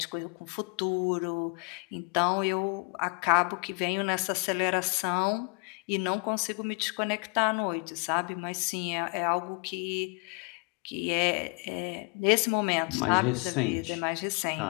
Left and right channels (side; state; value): right; quieter; 33.2 dB